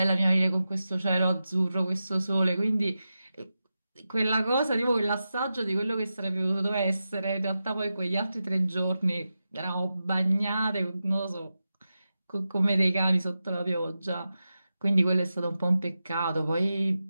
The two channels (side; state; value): both; inverted; correlation -0.91